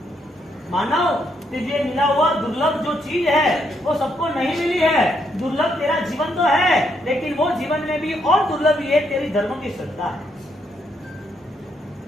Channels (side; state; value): both; normal; correlation 0.75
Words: मानव तुझे मिला हुआ दुर्लभ जो चीज है वो सबको नहीं मिली है, दुर्लभ तेरा जीवन तो है, लेकिन वो जीवन में भी और दुर्लभ ये तेरी धर्म की श्रद्धा है।